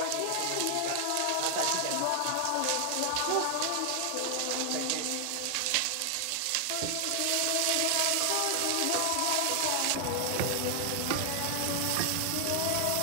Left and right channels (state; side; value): different; both; correlation 0.00